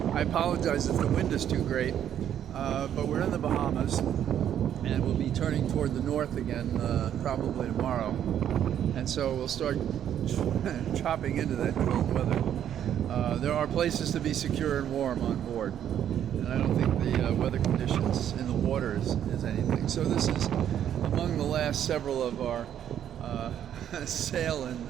I apologize if the wind is too great, but we're in the Bahamas and we'll be turning toward the north again probably tomorrow. And so we'll start chopping into that cold weather. There are places to be secure and warm on board, and I don't think the weather conditions in the water is anything. So this is among the last several of our sail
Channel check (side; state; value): left; quieter; 10.0 dB